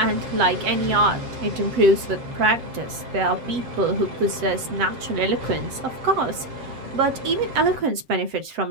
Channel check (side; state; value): left; late; 7.6 ms